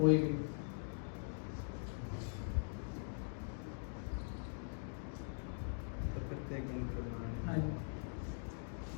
भी? हाँ जी,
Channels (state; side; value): silent; right; digital silence